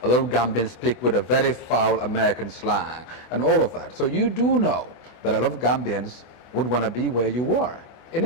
A lot of Gambians speak with a very foul American slang and all of that. So you do know that a lot of Gambians would want to be where you were, in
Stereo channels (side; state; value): right; late; 24 ms